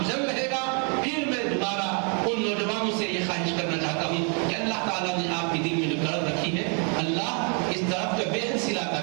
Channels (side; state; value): left; quieter; 38.7 dB